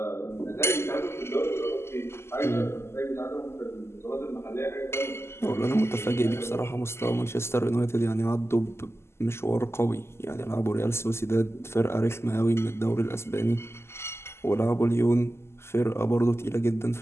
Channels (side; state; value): right; late; 0.12 ms